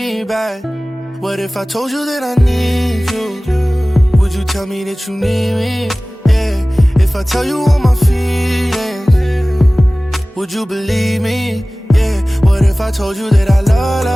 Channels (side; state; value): both; normal; correlation 0.98